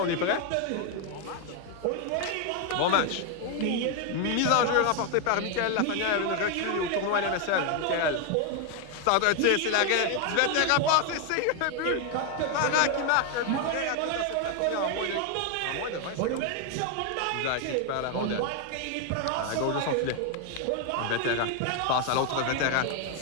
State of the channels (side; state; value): both; different; correlation 0.01